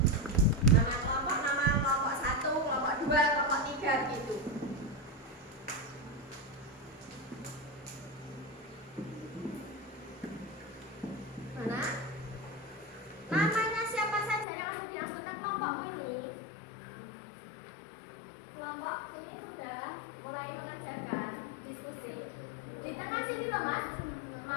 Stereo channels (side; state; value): right; drops out; at 14.5 s